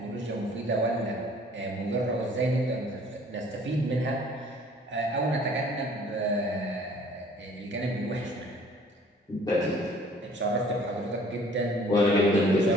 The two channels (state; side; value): normal; both; correlation 0.54